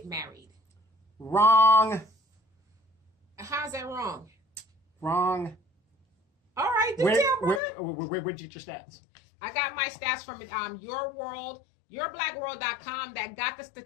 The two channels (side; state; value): right; drops out; at 7.6 s